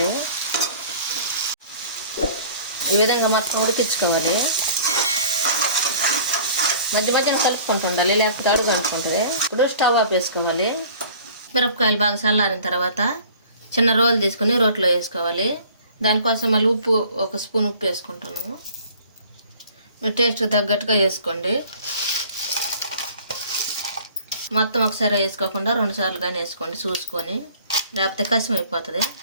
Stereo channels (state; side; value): inverted; both; correlation -0.49